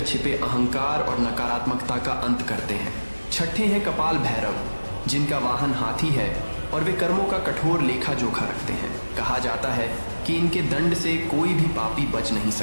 छिपे अहंकार और नकारात्मकता का अंत करते हैं। छठे हैं कपाल भैरव जिनका वाहन हाथी है और वे कर्मों का कठोर लेखा जोखा रखते हैं। कहा जाता है कि इनके दंड से कोई भी पापी बच नहीं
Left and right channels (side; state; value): both; inverted; correlation -1.00